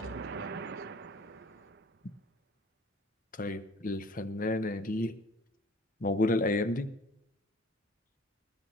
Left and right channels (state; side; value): normal; both; correlation 0.49